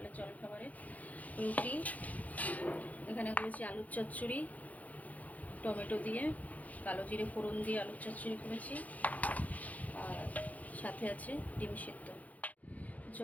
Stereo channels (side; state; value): right; late; 0.075 ms